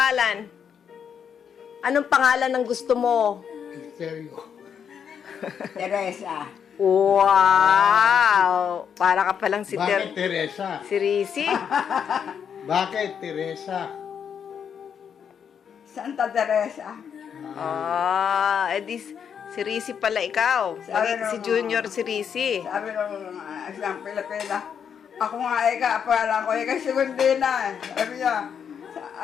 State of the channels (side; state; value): right; quieter; 7.6 dB